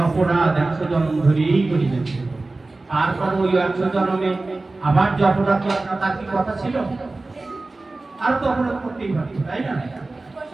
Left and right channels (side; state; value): left; quieter; 3.2 dB